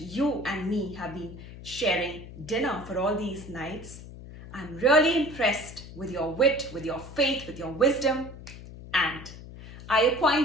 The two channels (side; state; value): left; noise; hum, 14 dB below the sound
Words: and me have been sharing dinner for all these nights. I'm really impressed with your wit, with your faith, with your wisdom, and I